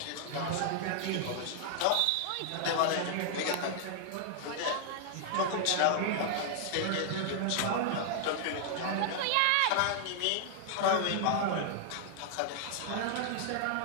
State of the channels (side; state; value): both; different; correlation -0.01